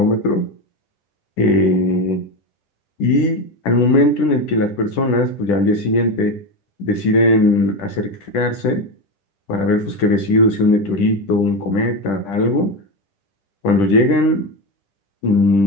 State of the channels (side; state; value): right; late; 10 ms